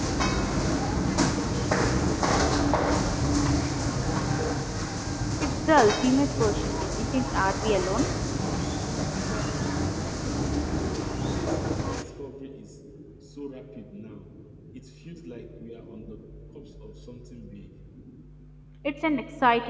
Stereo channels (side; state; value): both; identical; correlation 1.00